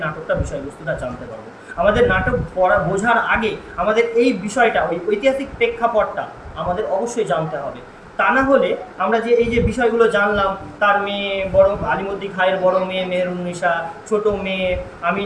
নাটকটা বিষয়বস্তুটা জানতে পারবো। আমাদের নাটক পড়া বোঝার আগে আমাদের এই বিষয়টা, ওই ঐতিহাসিক প্রেক্ষাপটটা আমাদের অবশ্যই জানতে হবে। তা না হলে আমরা যে এই যে বিষয়গুলো জানলাম, তার মেয়ে বড় আলিমুদ্দিন খাঁয়ের বড় মেয়ে মেহেরুন্নিসা, ছোট মেয়ে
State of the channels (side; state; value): both; identical; correlation 1.00